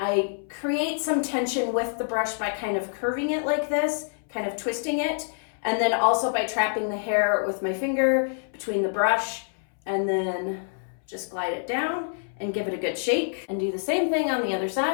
create some tension with the brush by kind of curving it like this, kind of twisting it, and then also by trapping the hair with my finger between the brush, and then just glide it down and give it a good shake, and do the same thing on the other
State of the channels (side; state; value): right; silent; 61 dB below the other